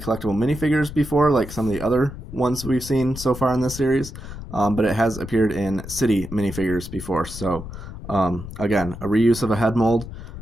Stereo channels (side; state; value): left; noise; rumble, 11 dB below the sound